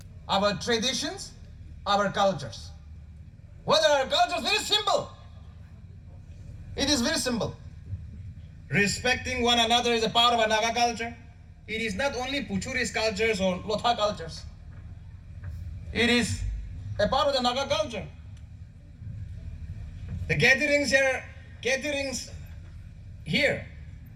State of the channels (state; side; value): identical; both; correlation 1.00